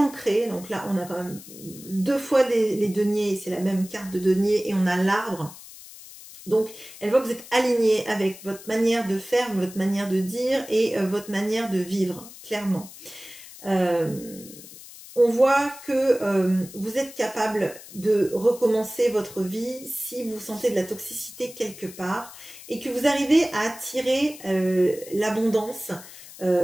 donc là on a quand même 2 fois les deniers, c'est la même carte de denier, et on a l'arbre. Donc elle voit que vous êtes aligné avec votre manière de faire, votre manière de dire et votre manière de vivre, clairement. On voit que vous êtes capable de recommencer votre vie si vous sentez de la toxicité quelque part et que vous arrivez à attirer l'abondance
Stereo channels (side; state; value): left; noise; hiss, 17 dB below the sound